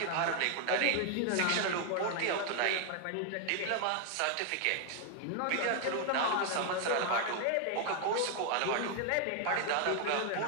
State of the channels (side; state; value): both; different; correlation 0.00